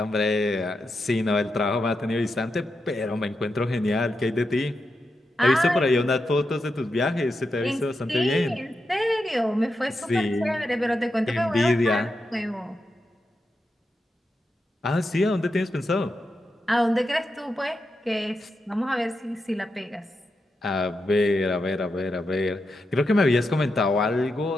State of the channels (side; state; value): both; normal; correlation 0.87